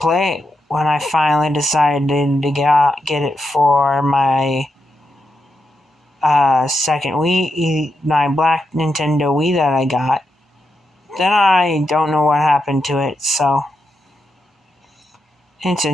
it when I finally decided to get it for my second Wii, my black Nintendo Wii that I got. Then I don't know what happened to it, so it's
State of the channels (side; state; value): both; normal; correlation 0.85